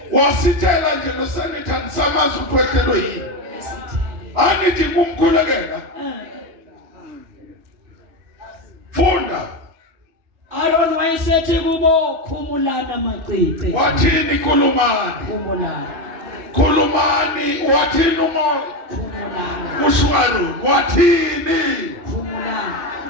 Wasithela nje noSanithani samazi ukuthi wehlelwe yini. Angithi kumkhulekela. Funda. Aaron wayesethi kubo khumulana macice. Wathini khulumani? Khumulana. Khulumani wathini umoya? Khumulana. Ushwaro wathini? Khumulana.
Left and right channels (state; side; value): late; left; 2.5 ms